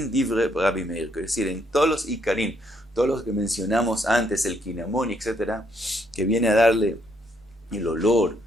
Divre Rabbi Meir, es decir, en todos los Ikarim, todos los que mencionamos antes, el Kinamón, etcétera, que viene a darle el olor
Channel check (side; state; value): both; normal; correlation 0.72